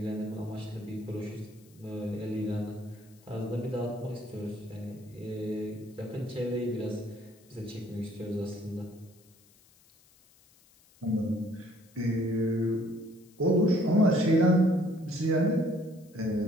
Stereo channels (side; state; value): left; noise; hiss, 29 dB below the sound